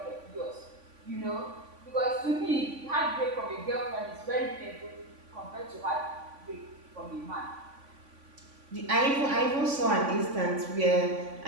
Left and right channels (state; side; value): late; left; 3.5 ms